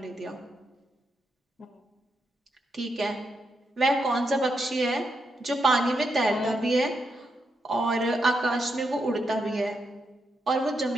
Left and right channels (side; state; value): both; normal; correlation 0.82